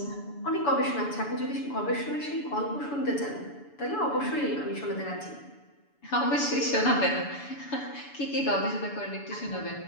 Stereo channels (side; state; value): right; late; 7.0 ms